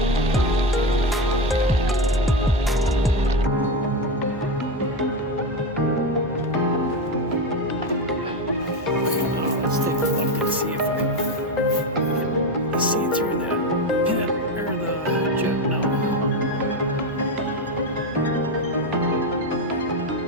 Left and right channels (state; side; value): normal; both; correlation 0.14